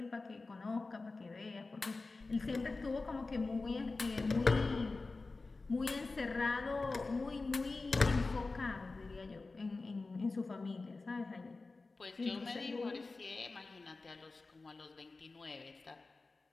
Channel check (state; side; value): quieter; right; 3.6 dB